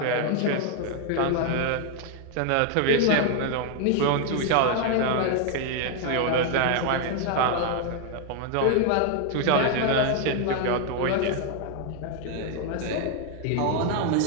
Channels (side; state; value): both; different; correlation 0.00